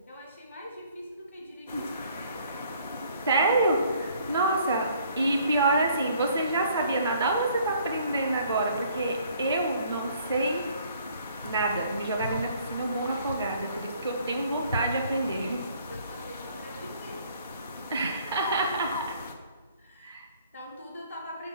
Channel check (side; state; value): both; inverted; correlation -0.60